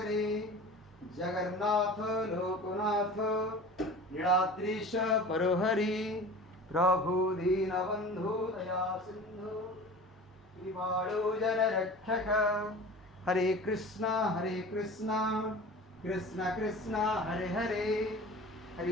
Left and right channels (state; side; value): normal; both; correlation 0.38